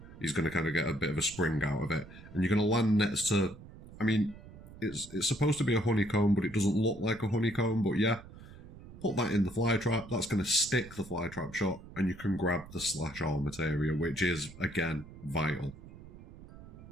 He's going to kind of get a bit of a spring out of it. And you're going to land next to, I mean, it's supposed to be a honeycomb, but it doesn't look like a honeycomb, but yeah. Put that in the fly trap, that's going to stick the fly trap shut, and you can grab the slash-all materia, which is, again, vital.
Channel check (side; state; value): right; noise; rumble, 17 dB below the sound